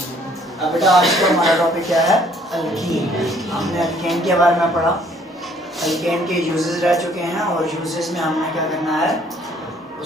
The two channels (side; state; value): both; normal; correlation 0.61